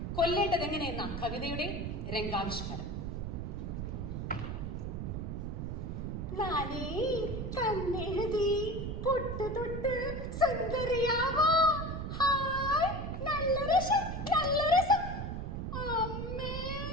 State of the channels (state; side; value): noise; right; rumble, 4 dB below the sound